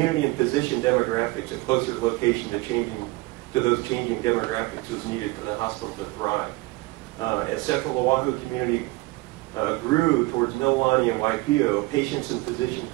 and physician demographics, a closer location to those changing demographics was needed for the hospital to thrive. As Central Oahu community grew towards Mililani and Waipio, patients and physicians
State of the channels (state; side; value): quieter; left; 21.6 dB